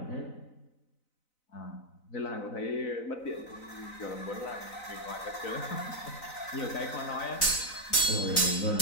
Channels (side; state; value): right; late; 4.0 ms